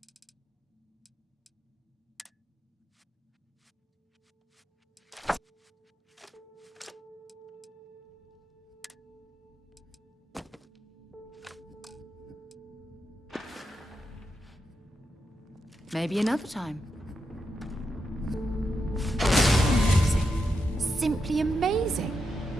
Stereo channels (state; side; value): normal; both; correlation 0.85